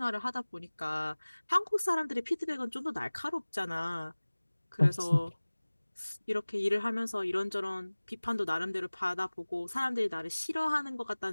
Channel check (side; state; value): both; inverted; correlation -1.00